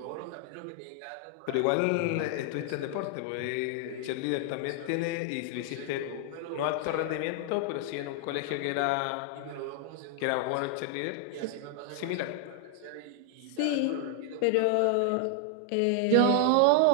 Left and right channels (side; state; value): both; different; correlation 0.00